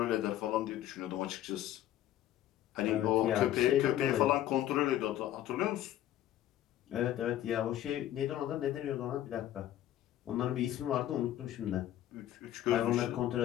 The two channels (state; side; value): quieter; right; 12.7 dB